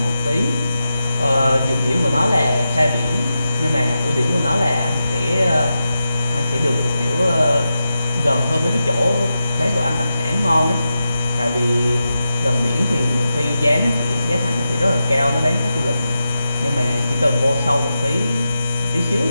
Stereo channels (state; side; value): inverted; both; correlation -0.90